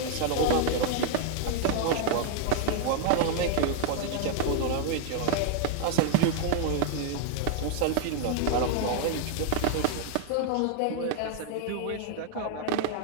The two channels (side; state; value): both; different; correlation 0.00